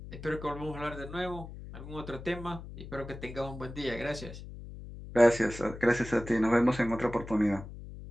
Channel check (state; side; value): noise; left; hum, 12 dB below the sound